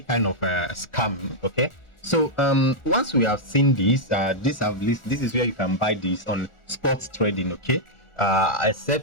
kind of scam. Okay. So once we have seen this, this is where you can buy this on spot trading. Okay,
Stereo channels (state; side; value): late; right; 1.4 ms